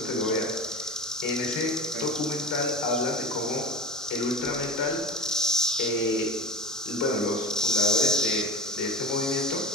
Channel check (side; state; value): both; normal; correlation 0.28